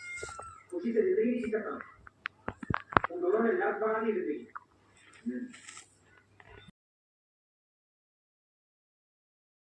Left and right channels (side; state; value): both; identical; correlation 1.00